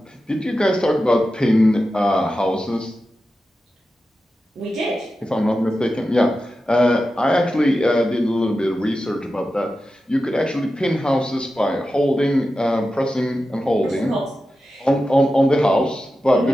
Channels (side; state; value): both; normal; correlation 0.92